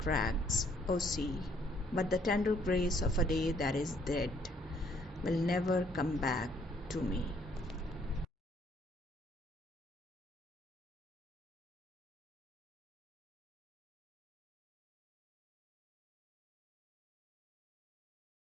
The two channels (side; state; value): both; normal; correlation 0.65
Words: O sea, but the tender grace of a day that is dead will never come back to me.